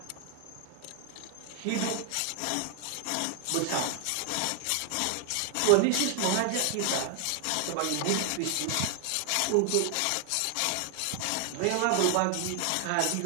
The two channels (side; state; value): both; different; correlation 0.00